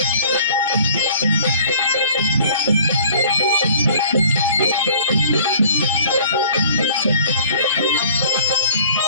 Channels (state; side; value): inverted; both; correlation -0.51